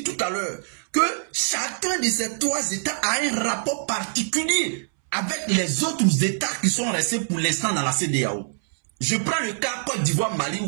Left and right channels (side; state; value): left; silent; 62 dB below the other